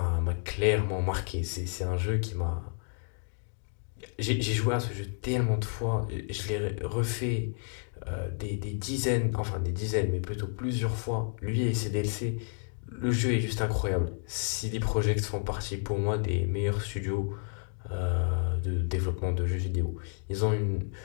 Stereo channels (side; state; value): right; silent; 57 dB below the other